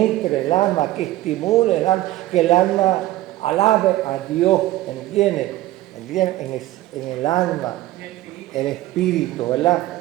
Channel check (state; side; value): quieter; left; 15.9 dB